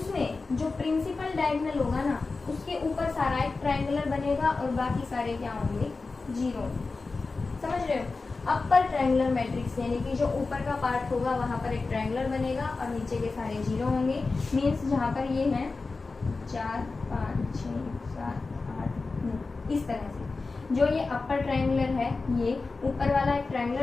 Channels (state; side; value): quieter; right; 3.9 dB